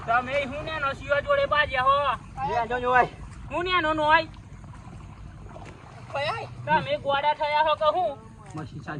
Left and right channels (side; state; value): both; identical; correlation 1.00